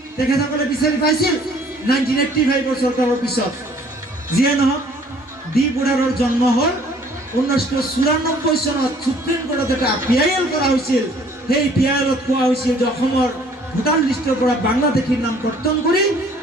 তেখেতসকলে বিচাৰি পাইছিল 1985 চৰকাৰৰ পিছত। যিয়ে নহওক, ডি বুঢ়াৰৰ জন্ম হ'ল 1994 চনত। সুপ্ৰিম কোৰ্টত এটা PIL কৰা হৈছিল। সেই PILত কোৱা হৈছিল যে অসমৰ ভোটাৰ লিষ্টৰ পৰা বাংলাদেশীৰ নাম কৰ্তন কৰি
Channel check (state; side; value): normal; both; correlation 0.57